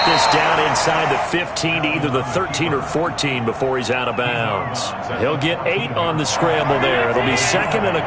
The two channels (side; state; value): both; identical; correlation 1.00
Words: this down inside the 15 to either the 13 or 14 before he's out of bounds. He'll get 8 on the scramble there. It'll be second and a